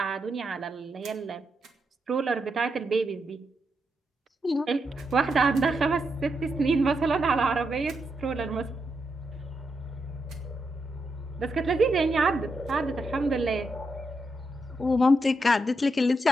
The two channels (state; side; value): normal; both; correlation 0.83